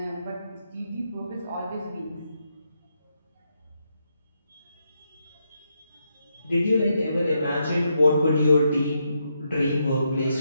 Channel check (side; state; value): both; inverted; correlation -0.81